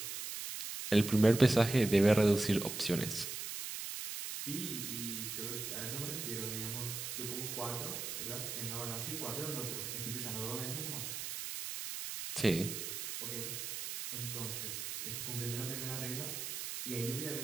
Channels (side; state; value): right; noise; hiss, 5 dB below the sound